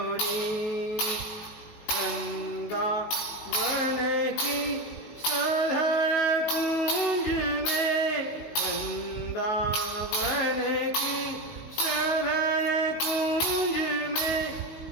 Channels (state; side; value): late; right; 19 ms